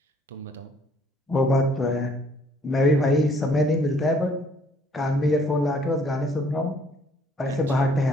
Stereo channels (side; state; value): both; normal; correlation 0.62